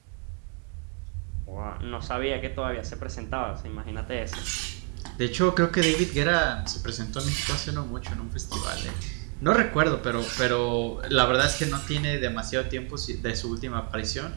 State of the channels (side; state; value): left; quieter; 37.6 dB